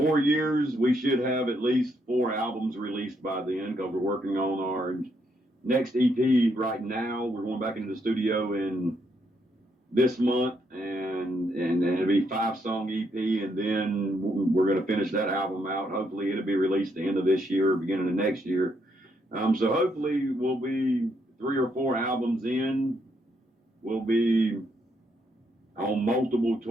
years, we should have at least 4 albums released by then, because we're working on our next EP right now. We're going back into the studio in this month, and it'll be 5-song EP, and then we're going to finish that album out. Hopefully it'll be released the end of this year, beginning of next year. So hopefully we'll be 3 or 4 albums in. We'll be on multiple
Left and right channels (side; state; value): both; normal; correlation 0.76